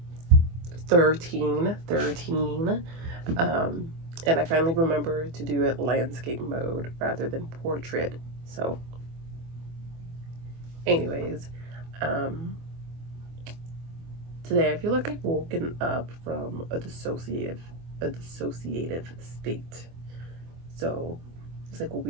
13, and I finally remember to do it landscape mode rather than portrait. So, anyways, um, today I feel like I've woken up from a dissociative state. So it's like a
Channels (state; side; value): late; left; 24 ms